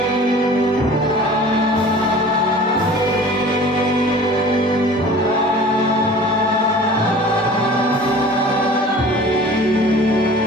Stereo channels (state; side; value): normal; both; correlation 0.43